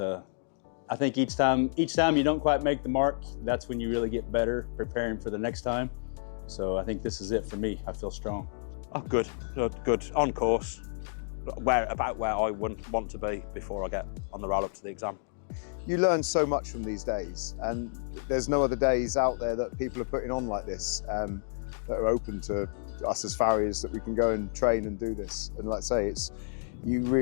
I think each time you don't quite make the mark, that's when you really get better preparing for the next time. So I think this is it for me. I feel strong. Oh, good. On course. About where I wouldn't want to be before I get on the roll up to the exam. You learn so much from these days, and there's no other days out there that people are putting on like this that are open to us as farriers, that we can go and train and do this. And like I say, you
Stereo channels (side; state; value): right; silent; digital silence